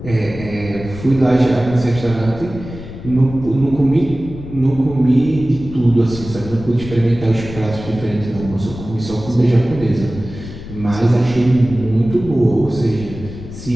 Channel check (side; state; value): left; noise; rumble, 12 dB below the sound